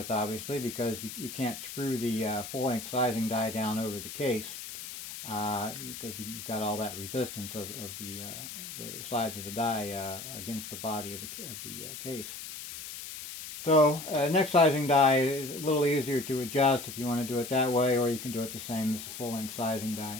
obviously, because you can't screw the full-length sizing die down over the case because you've got all that resistance of the sides of the die against the body of the case. So neck sizing die is a little easier to adjust if you want to do it that way, or you can do it the same as the full-length sizing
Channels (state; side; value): noise; left; hiss, 10 dB below the sound